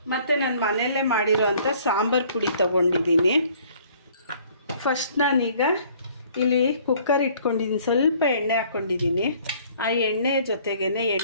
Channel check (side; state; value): both; inverted; correlation -0.57